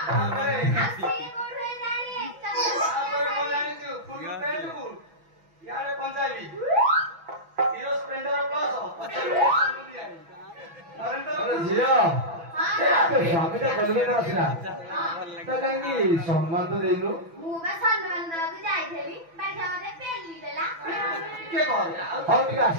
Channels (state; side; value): late; left; 6.0 ms